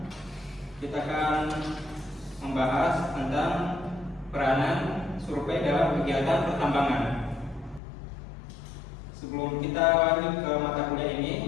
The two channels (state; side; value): drops out; right; at 7.8 s